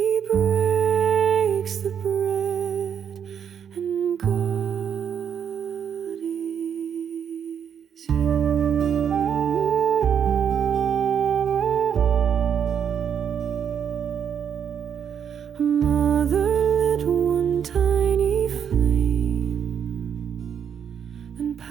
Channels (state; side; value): quieter; left; 8.1 dB